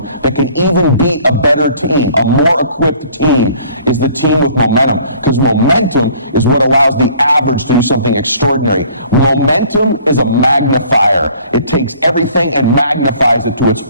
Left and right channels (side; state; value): both; inverted; correlation -0.54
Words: that can even beat a better team. A more equipped team is the team with momentum, because momentum is what allows the average to do something extraordinary. Momentum is a magnifier. It takes everything and magnifies it to its